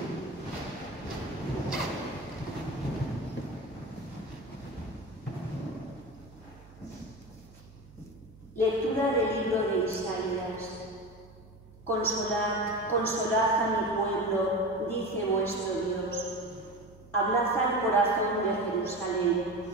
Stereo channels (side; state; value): right; noise; hum, 22 dB below the sound